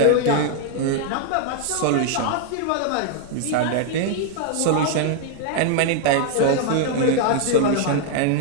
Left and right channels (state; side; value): different; both; correlation 0.00